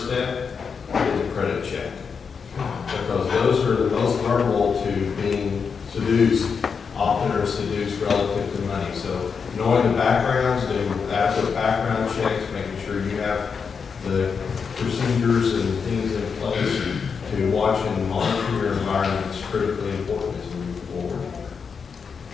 step is a credit check. Because those are the most vulnerable to being seduced, often are seduced relative to money. So knowing the backgrounds, doing adequate background checks, making sure you have the procedures and things in place to watch and monitor your environment is critically important as we move forward.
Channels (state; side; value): quieter; right; 5.9 dB